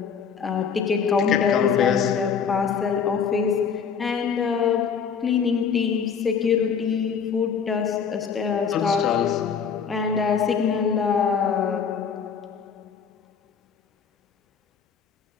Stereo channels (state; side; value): quieter; right; 6.6 dB